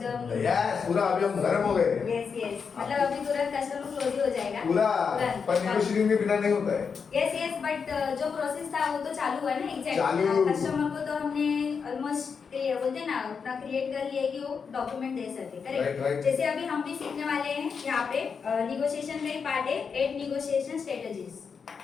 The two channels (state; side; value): quieter; right; 5.9 dB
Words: यस पूरा अभी हम गर्म हो गए यस मतलब अभी तुरंत कस्टमर क्लोज ही हो जाएगा पूरा तुरंत। पर नेगोशिएटिंग के बिना नहीं होता है यस बट जो प्रोसेस था वो तो चालू हुआ ना एग्जैक्ट। चालू। कस्टमर को तो हमने ऑलमोस्ट बोलते हैं ना उतना क्रिएट कर लिया है कि वो डॉक्यूमेंट दे सके Right. करेक्ट। जैसे अभी हम भी सीखने वाले हैं यहाँ पे निगोशिएशन का ही पार्ट है 8 निगोशिएशन स्ट्रेटजीज,